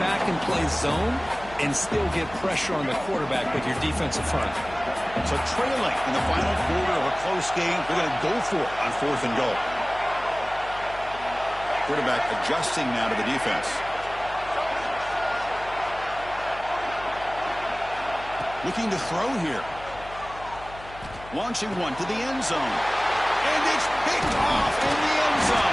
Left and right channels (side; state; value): left; noise; hum, 17 dB below the sound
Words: and play zone and still get pressure on the quarterback with your defensive front. So trailing in the final quarter of a close game, they're going to go for it on fourth and goal. Quarterback adjusting now to the defense. Looking to throw here. Launching one to the end zone. And it's picked off in the end